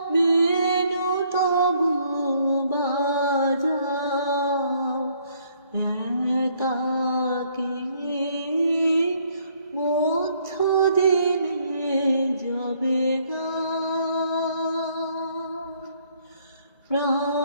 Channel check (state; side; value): inverted; both; correlation -0.66